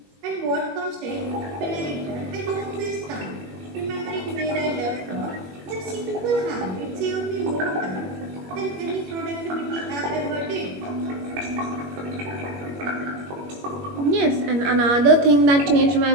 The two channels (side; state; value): left; late; 21 ms